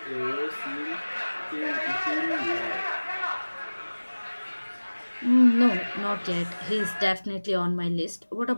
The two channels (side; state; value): both; inverted; correlation -1.00